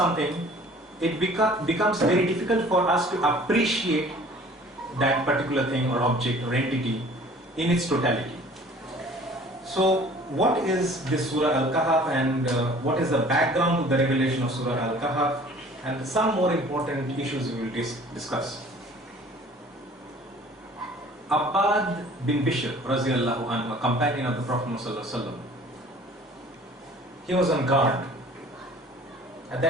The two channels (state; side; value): normal; both; correlation 0.50